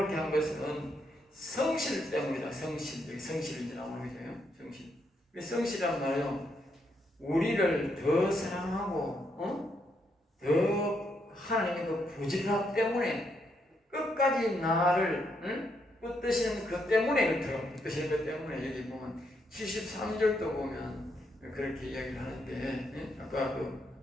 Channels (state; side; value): normal; both; correlation 0.77